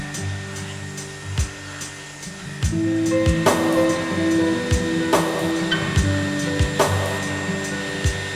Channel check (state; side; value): identical; both; correlation 1.00